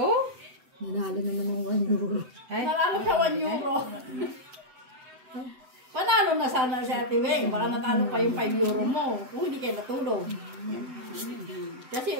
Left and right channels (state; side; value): late; left; 7.9 ms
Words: Nanalo naman ng 1 euro. Ay. Nanalo sa 1 euro. Panalo na sana si Ate Weng. Baka natalo pa yung 5 euro mo. Kung hindi kayo natulog.